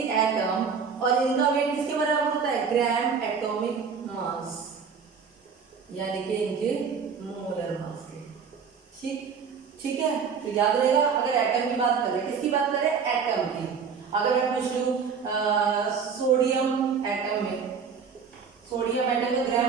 एटम, और इनका वेट किसके बराबर होता है, ग्राम एटॉमिक मास, यानी कि इनके मोलर मास के, ठीक। ठीक है, तो याद रहेगा अगर एटम की बात करें, किसकी बात करें, एटम की। अगर मैं पूछ लूं सोडियम एटम में, सोडियम एटम का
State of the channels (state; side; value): quieter; left; 6.1 dB